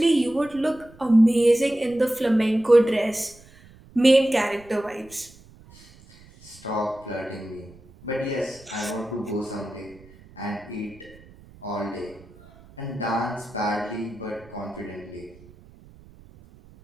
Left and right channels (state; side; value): noise; right; rumble, 24 dB below the sound